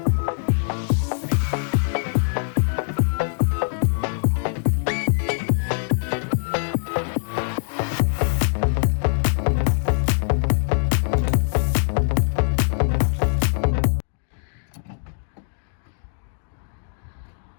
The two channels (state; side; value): silent; right; digital silence